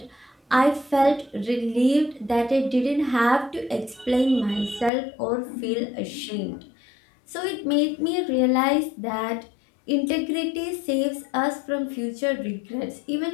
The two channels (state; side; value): drops out; right; at 4.9 s